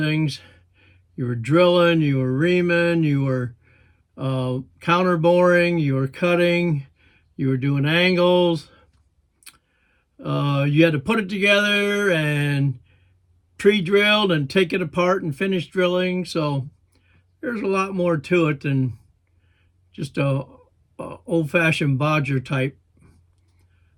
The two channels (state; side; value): identical; both; correlation 1.00